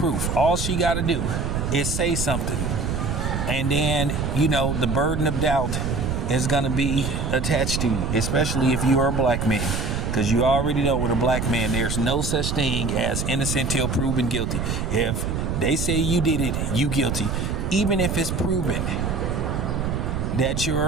All she got to do is say something, and then, you know, the burden of doubt is gonna be attached to you, especially if you are a black man. Because you already know with a black man, there's no such thing as innocent till proven guilty. If they say you did it, you guilty. Even if it's proven that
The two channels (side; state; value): right; noise; rumble, 1 dB below the sound